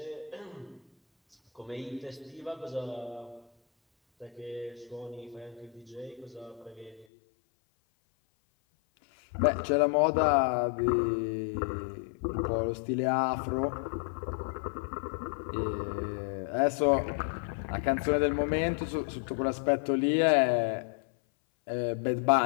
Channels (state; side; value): drops out; right; at 7.1 s